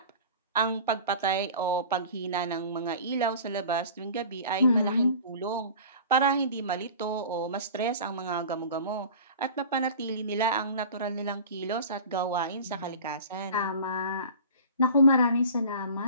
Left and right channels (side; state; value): both; inverted; correlation -0.40